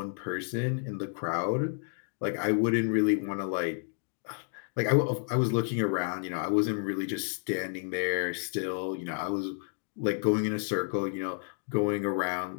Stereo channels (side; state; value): right; silent; digital silence